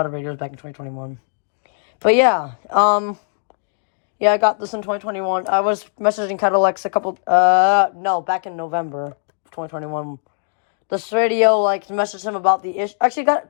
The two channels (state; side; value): silent; right; digital silence